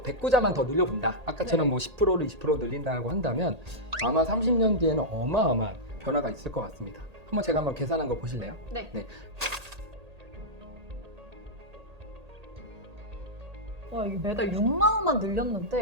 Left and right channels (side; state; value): left; late; 1.8 ms